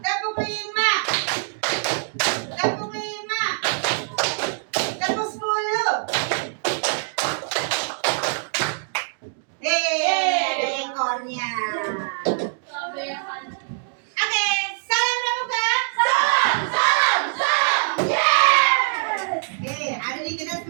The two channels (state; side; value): silent; left; digital silence